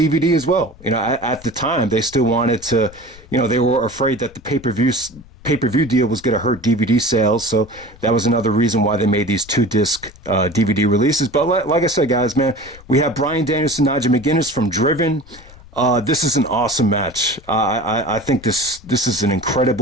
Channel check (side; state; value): left; noise; rumble, 22 dB below the sound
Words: as well. At the time, they still wanted to, they were afraid that the pay-per-view deal was going to hurt DVD sales, so that was another reason why they made these 2-disc DVD releases. But like I said, guys, man, we have Bryan Danielson, Nigel McGuinness from Driven. This is an awesome match. I think this is an